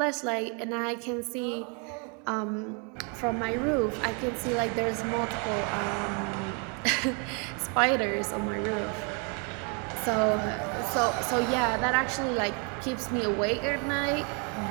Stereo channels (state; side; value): quieter; left; 35.7 dB